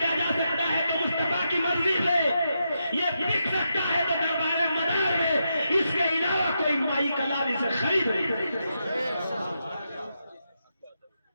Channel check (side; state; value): both; inverted; correlation -0.84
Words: جا سکتا ہے تو مصطفیٰ کی مرضی سے، یہ بک سکتا ہے تو دربار مدار میں، اس کے علاوہ کوئی مائی کلام اسے خرید نہیں۔